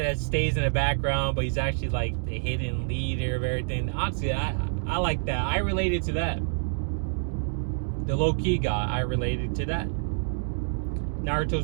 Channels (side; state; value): left; silent; digital silence